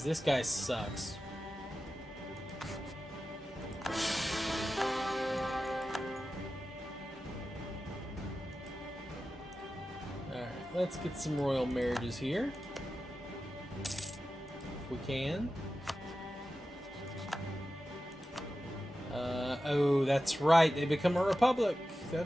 this guy sucks. Alright, let's get some royal marriages here. If we can. Oh, that's right. They become a republic.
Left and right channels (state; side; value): normal; both; correlation 0.93